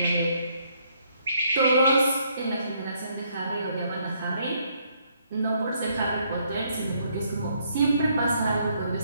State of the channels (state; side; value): inverted; both; correlation -0.70